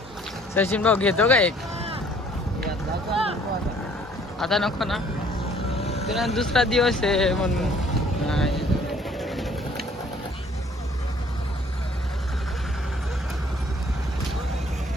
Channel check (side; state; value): both; normal; correlation 0.58